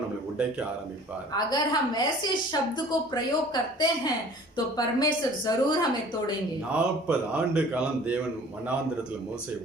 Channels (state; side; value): normal; both; correlation 0.49